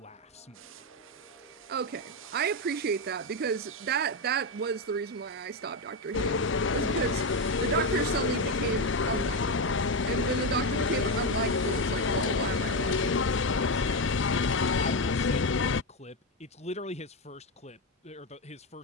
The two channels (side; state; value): both; normal; correlation 0.10